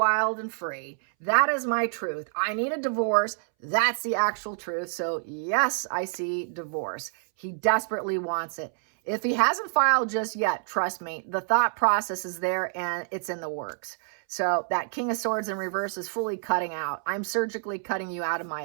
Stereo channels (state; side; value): silent; left; 60 dB below the other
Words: and free. That is my truth. I need a divorce. That's the actual truth. So yes, I see divorce. He desperately wants it. If he hasn't filed just yet, trust me, the thought process is there and it's in the works. So that King of Swords in reverse is fully cutting out. I'm surgically cutting you out of